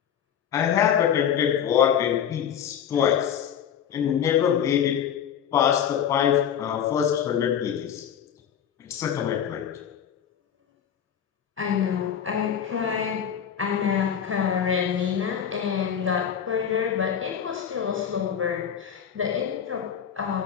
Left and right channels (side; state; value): right; quieter; 8.7 dB